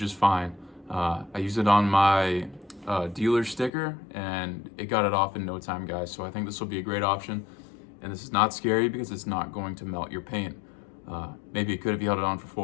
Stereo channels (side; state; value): right; drops out; at 3.7 s